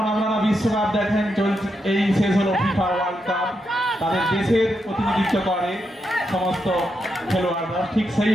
আপনারা বিশ্বকাপ দেখেন চলছে, এই শেষ হলো ফিফা ওয়ার্ল্ড কাপ, তাদের দেশের প্রতিনিধিত্ব করে সমস্ত খেলোয়াড়রা, ঠিক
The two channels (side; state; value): both; normal; correlation 0.83